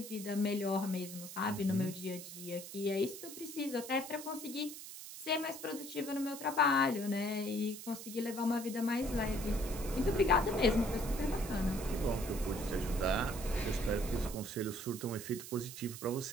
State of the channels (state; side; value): noise; right; hiss, 11 dB below the sound